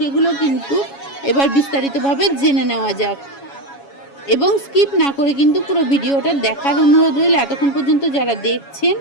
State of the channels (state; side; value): late; right; 7.2 ms